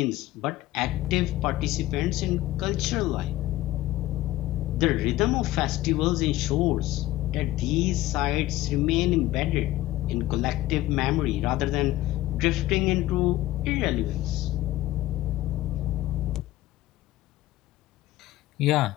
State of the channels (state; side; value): quieter; right; 15.9 dB